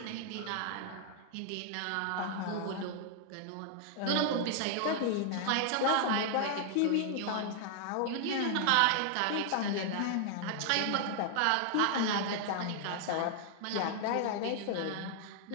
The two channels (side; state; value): both; different; correlation 0.00